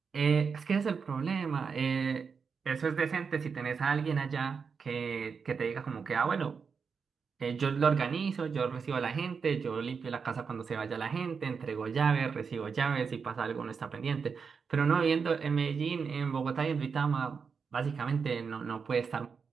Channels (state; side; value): quieter; left; 5.7 dB